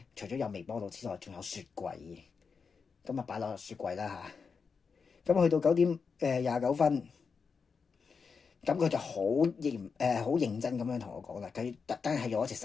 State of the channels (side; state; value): right; quieter; 5.4 dB